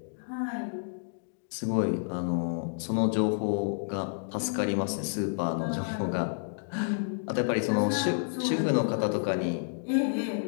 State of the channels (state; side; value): silent; right; digital silence